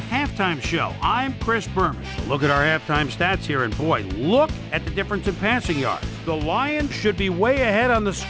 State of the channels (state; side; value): identical; both; correlation 1.00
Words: Halftime Show. I'm Chris Berman. Look at our halftime stats here, and boy, look at the difference in passing yards. The Lions should be way ahead on the